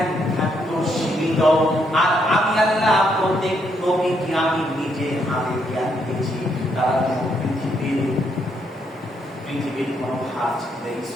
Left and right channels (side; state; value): both; normal; correlation 0.75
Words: থাকতো সীমিত। আর আমি আল্লাহ প্রত্যেক নবীকে আমি নিজে হাতে জ্ঞান দিয়েছি। তারা পৃথিবীর কোনো হাত